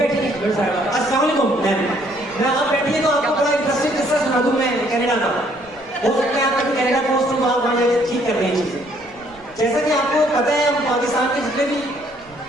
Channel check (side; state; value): right; noise; rumble, 26 dB below the sound